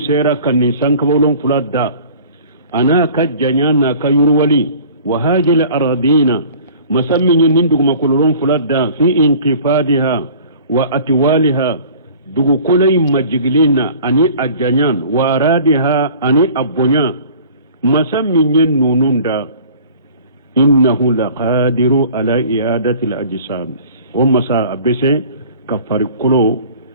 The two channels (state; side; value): inverted; both; correlation -0.47